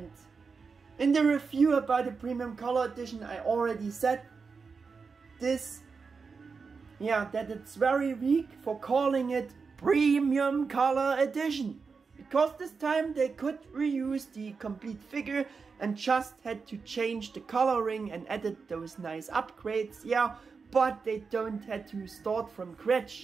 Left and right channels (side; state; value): left; quieter; 5.0 dB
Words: in the review about the premium color edition I already said this, yeah, that it's very weak for calling it premium color edition. Because this time they could reuse the complete figure and just had to change the coloring and added those nice upgrades, yeah, but they don't had to start from